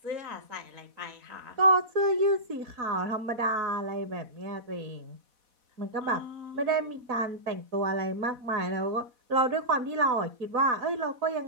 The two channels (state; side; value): late; left; 4.1 ms